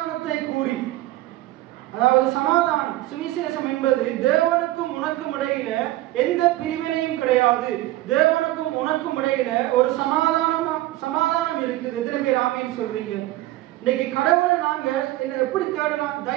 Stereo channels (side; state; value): left; quieter; 16.5 dB